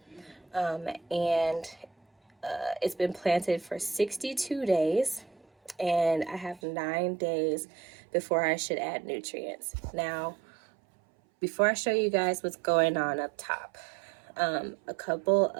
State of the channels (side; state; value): left; drops out; at 6.6 s